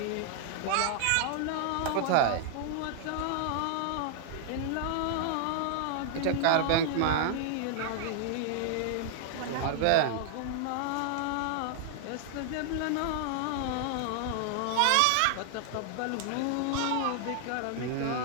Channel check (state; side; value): different; both; correlation -0.01